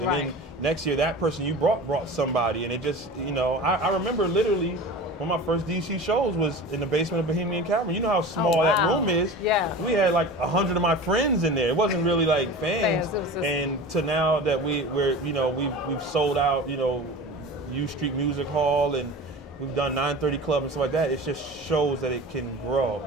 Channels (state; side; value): normal; both; correlation 0.35